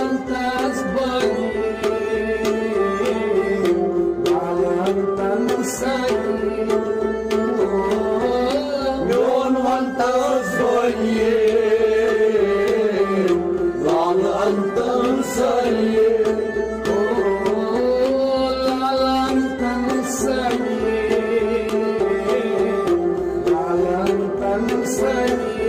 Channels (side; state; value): both; identical; correlation 1.00